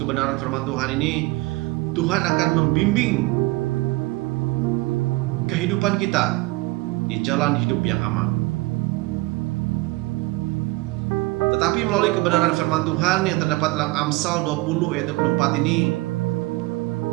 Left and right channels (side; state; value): left; quieter; 21.8 dB